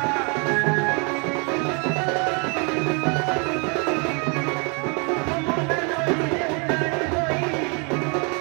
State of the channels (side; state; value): left; quieter; 34.1 dB